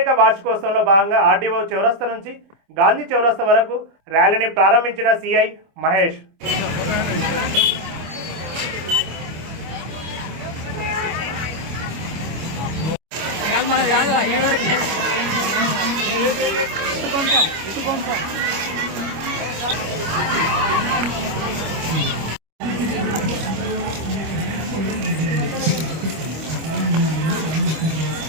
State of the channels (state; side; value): late; left; 25 ms